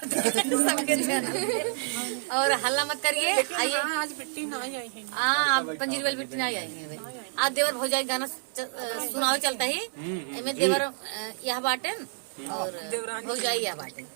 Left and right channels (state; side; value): silent; left; digital silence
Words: चैनल और हल्ला मत करिए। आइए आज बिट्टी ना आई है। हाँ पंजीर वाली बिट्टी नहीं आएंगे भाई। आज देवर भौजाई गाना सुनाओ चलता ही इनमें देवर यह बाटे और भौजाई यह बाटे